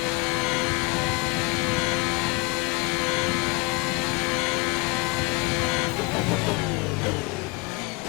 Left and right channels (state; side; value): quieter; right; 27.0 dB